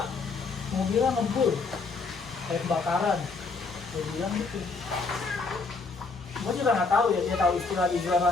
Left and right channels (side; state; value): right; quieter; 4.3 dB